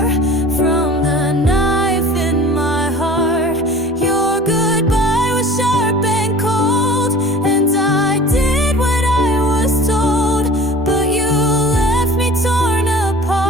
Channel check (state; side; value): normal; both; correlation 0.43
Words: from the knife in my heart. Your goodbye was sharp and cold, and I did what I was told, but you left me torn